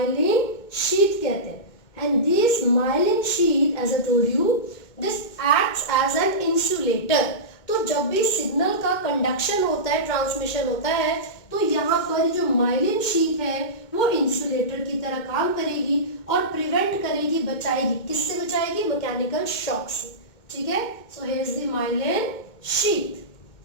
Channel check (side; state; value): right; late; 2.2 ms